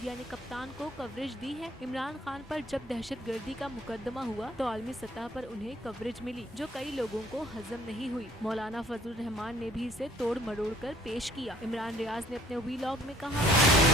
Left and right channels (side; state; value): both; normal; correlation 0.60